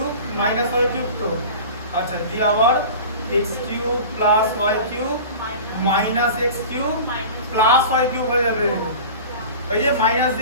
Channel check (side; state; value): both; inverted; correlation -0.36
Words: minus y cube, তো আচ্ছা দিয়ে আবার x cube plus y cube minus x cube plus y cube হয়ে যাবে। এই যে মাইনাস